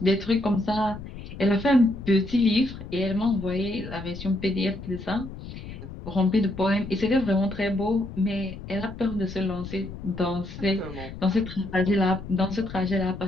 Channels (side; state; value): left; noise; rumble, 12 dB below the sound